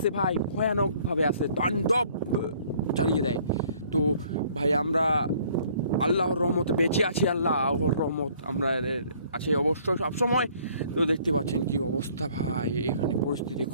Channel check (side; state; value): both; inverted; correlation -0.59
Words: ভাই, ভয়ানকভাবে আসে, তাণ্ডব চালিয়ে দেয়। তো ভাই, আমরা আল্লাহর রহমতে বেঁচে আছি, আল্লাহর রহমত আমরা আছে অবশ্যই সবসময়। তো দেখতে পাচ্ছেন কি অবস্থা ভাই, এখানে পরিস্থিতি